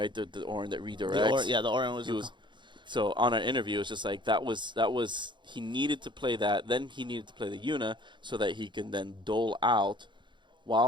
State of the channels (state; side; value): late; left; 0.23 ms